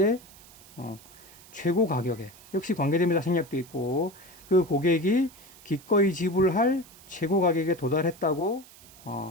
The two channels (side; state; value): right; noise; hiss, 22 dB below the sound